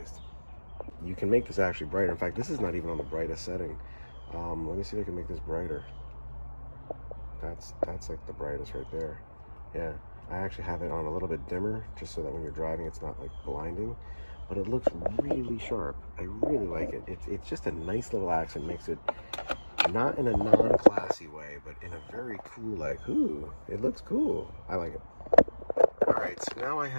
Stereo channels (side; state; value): both; inverted; correlation -1.00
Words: You can make this actually brighter. In fact, this is not even on the brightest setting. Let me see if I can make this brighter. That's like the brightest right there. Yeah, I actually have it on a little bit dimmer, just so that when you're driving, it's not like blinding. But it looks really sharp. I really like it. It's just a nice little accent. Makes it not in a non-classy way, but in a very cool, like, ooh, it looks cool. I like it. All right, so now I